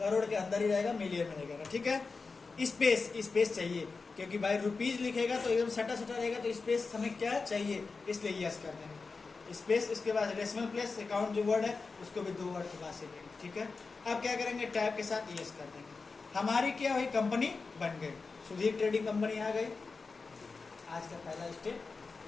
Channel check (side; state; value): right; quieter; 4.3 dB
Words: के अंदर ही रहेगा, मिलियन में रहेगा। ठीक है, स्पेस चाहिए, क्योंकि भाई रुपीज लिखेगा तो एकदम सटा रहेगा, तो स्पेस हमें क्या चाहिए, इसलिए यस कर देंगे। स्पेस, इसके बाद डेसिमल प्लेस, अकाउंट जो वर्ड है उसको भी 2 वर्ड के बाद से लेंगे, ठीक है। अब क्या करेंगे, टैब के साथ यस कर देंगे, हमारी क्या हुई, कंपनी बन गई, सुधीर ट्रेडिंग कंपनी आ गई। आज का पहला स्टेप